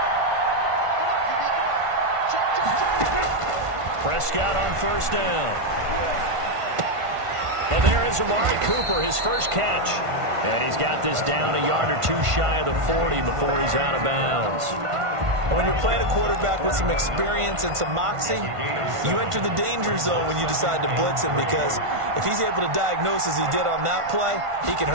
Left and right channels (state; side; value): late; left; 1.5 ms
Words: Prescott on 1st down. And there is Amari Cooper, his first catch. And he's got this down a yard or 2 shy of the 40 before he's out of bounds. And when you're playing a quarterback with some experience and some moxie, you enter the danger zone when you decide to blitz him, because if he's able to diagnose as he did on that play, he can